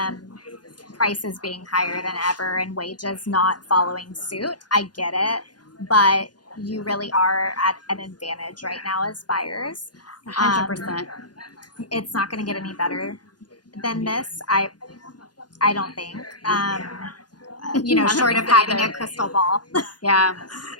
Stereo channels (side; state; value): right; late; 0.69 ms